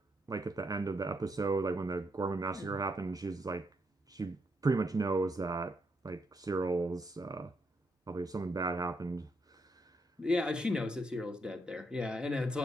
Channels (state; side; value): normal; both; correlation 0.78